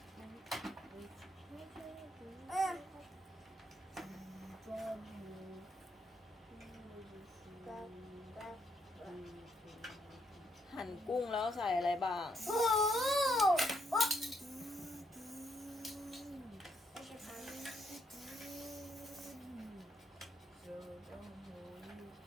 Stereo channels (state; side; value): normal; both; correlation 0.75